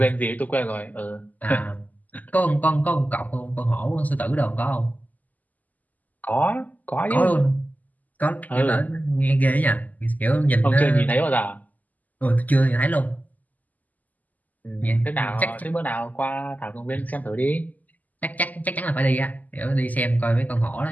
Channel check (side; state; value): right; late; 0.080 ms